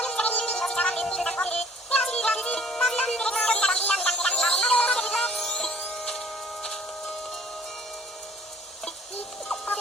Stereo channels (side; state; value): both; normal; correlation 0.56